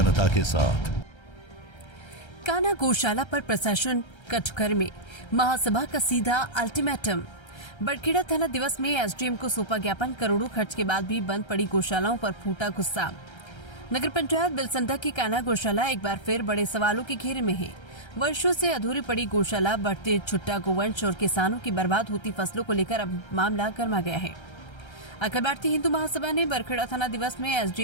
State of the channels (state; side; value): late; right; 1.3 ms